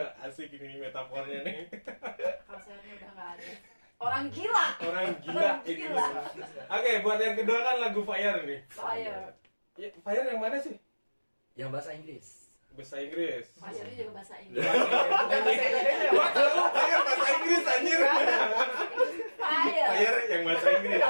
Asik ini metafornya nih. Kalau sehatnya udah nggak ada. Orang gila. Orang gila Orang ini. gila. Oke, buat yang kedua kan lagu Fire nih. Fire. Ya, Fire yang mana sih? Yang bahasa Inggris. Bahasa Inggris. Fire itu juga bahasa Inggris. Bukan bahasa Indonesia. Gua tahu Fire bahasa Inggris anjir. Fire. Fire yang bahasa Inggris.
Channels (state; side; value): inverted; both; correlation -1.00